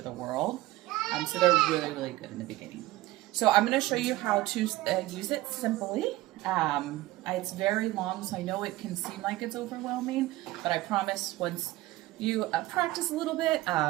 the world. So they're really, really good in the beginning. So I'm going to show you how to use it simply. It's very long, so I know it can seem like it's overwhelming, but I promise once you practice a little bit,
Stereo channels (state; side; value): quieter; left; 17.8 dB